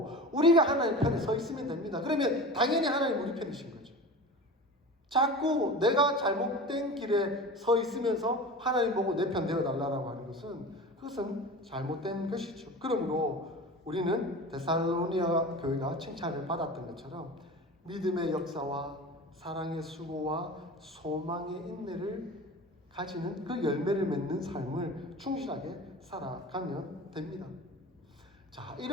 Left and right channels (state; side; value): normal; both; correlation 0.33